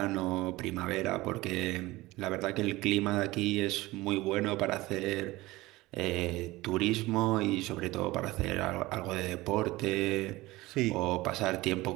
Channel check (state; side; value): quieter; left; 19.6 dB